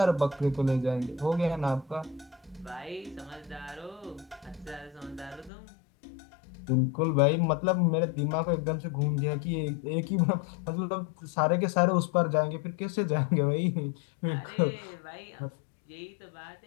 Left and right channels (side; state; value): right; drops out; at 5.5 s